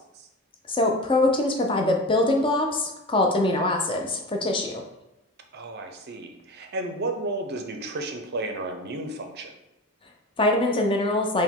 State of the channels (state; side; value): normal; both; correlation 0.30